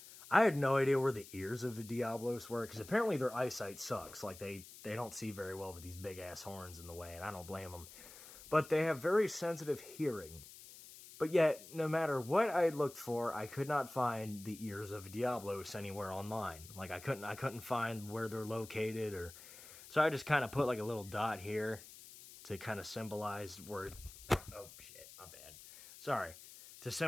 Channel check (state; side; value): noise; left; hiss, 17 dB below the sound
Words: I had no idea where the ears of the Diablos were, because apparently their eyesight sucks. Like, they don't see very well with these big-ass horns in the way, and I don't blame them. But they have very sensitive hearing. But yet, no matter what I looked for, I could not find the ears of Diablos anywhere online. Like, I couldn't find where they're located, or... So I just kind of put, like, a little dot here to kind of symbolize where... Oh, shit, my bad. Sorry. To